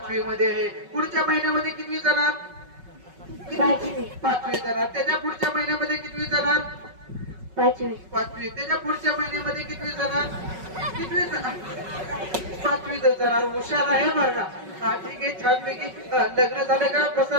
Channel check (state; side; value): late; left; 5.3 ms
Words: मध्ये आहे. पुढच्या महिन्यामध्ये कितवी जाणार? 5वी. 5वी जाणार. त्याच्या पुढच्या महिन्यामध्ये कितवी जाणार? 5वी. 5वी. त्याच्या पुढच्या महिन्यामध्ये कितवी जाणार? कितवी जाणार? 5वी जाणार. हुशार आहे बरं का. हा ठीक आहे. छानपैकी लग्न झालं का